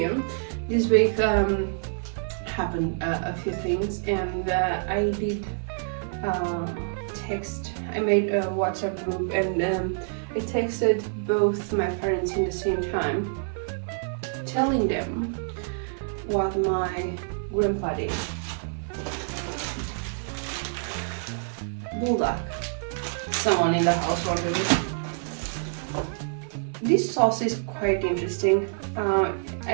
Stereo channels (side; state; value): left; silent; 60 dB below the other